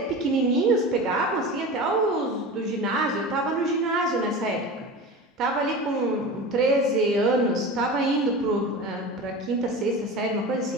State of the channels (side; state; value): both; normal; correlation 0.31